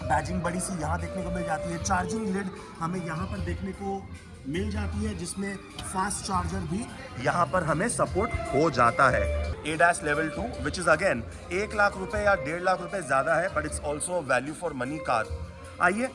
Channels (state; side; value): identical; both; correlation 1.00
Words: बड़ी सी यहाँ देखने को मिल जाती है. चार्जिंग लिड हमें यहाँ पर देखने को मिल जाती है, जिसमें फास्ट चार्जर भी यहाँ पर हमें सपोर्ट हो जाता है. ADAS level 2 which is again 1 lakh रुपए या 1.5 लाख रुपए ज़्यादा है, but it's also value for money car. आइए